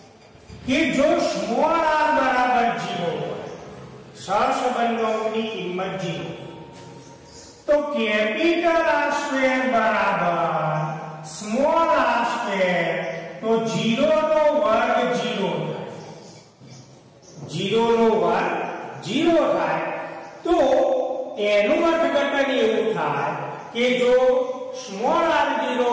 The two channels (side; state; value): both; identical; correlation 1.00